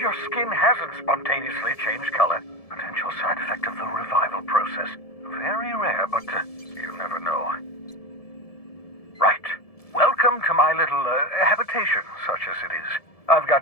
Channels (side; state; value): right; late; 1.7 ms